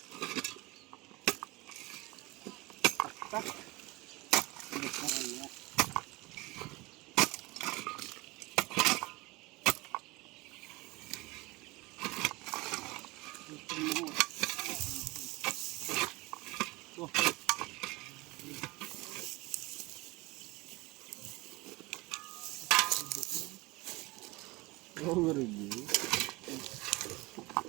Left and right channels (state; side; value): quieter; left; 22.9 dB